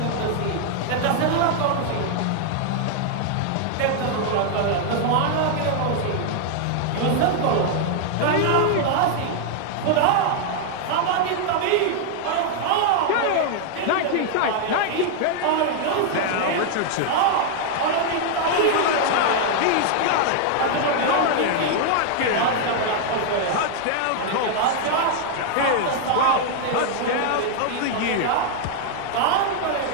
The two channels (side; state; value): both; different; correlation 0.00